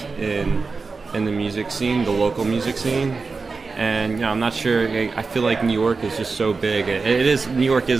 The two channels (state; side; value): quieter; left; 4.4 dB